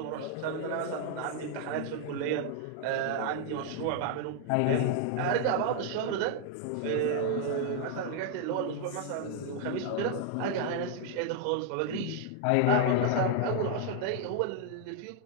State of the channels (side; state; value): both; different; correlation 0.00